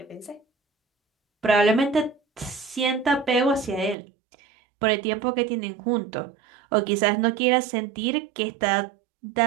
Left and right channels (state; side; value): drops out; left; at 4.0 s